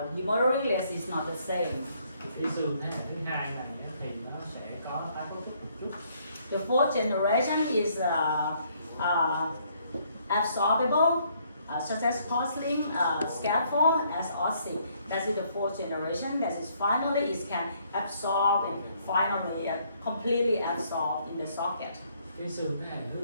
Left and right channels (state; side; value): inverted; both; correlation -0.68